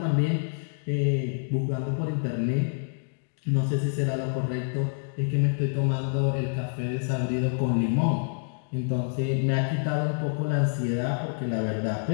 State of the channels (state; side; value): silent; right; digital silence